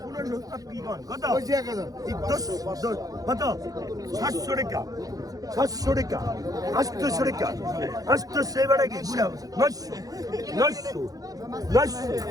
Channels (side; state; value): left; late; 0.17 ms